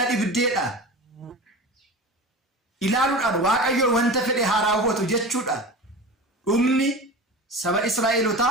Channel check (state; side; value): normal; both; correlation 0.32